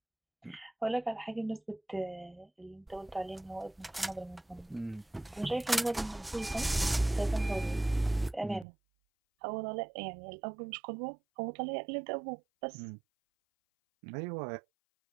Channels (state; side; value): drops out; left; at 8.7 s